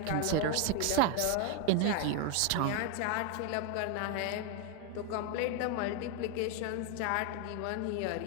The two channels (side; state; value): both; different; correlation 0.01